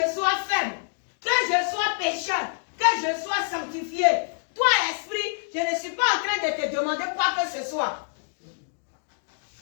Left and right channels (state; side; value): silent; right; digital silence